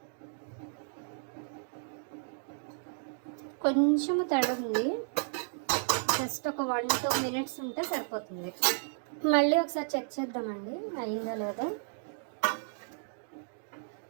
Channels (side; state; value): left; silent; digital silence